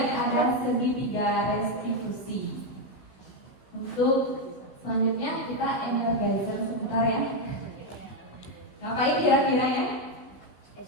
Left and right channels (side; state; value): right; late; 16 ms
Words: ada segitiga restitusi. Untuk selanjutnya kita energizer sebentar ya. Ngapain kira-kira ya?